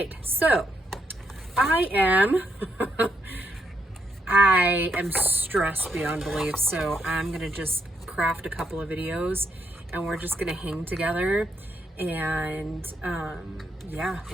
so I am stressed beyond belief, so I'm gonna just craft a couple of videos and we're just gonna hang together and yeah,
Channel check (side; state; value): both; normal; correlation 0.78